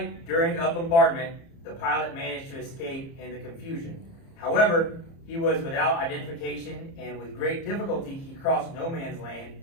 during a bombardment, the pilot managed to escape in the confusion. However, he was without identification, and with great difficulty he crossed no man's land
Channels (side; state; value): right; late; 30 ms